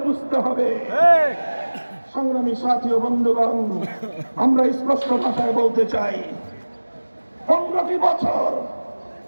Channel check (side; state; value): both; inverted; correlation -1.00